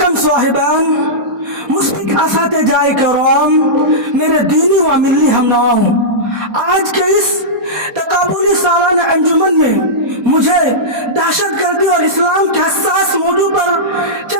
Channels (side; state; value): left; late; 4.2 ms